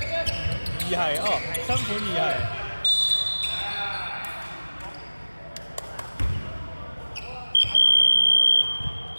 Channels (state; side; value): inverted; both; correlation -1.00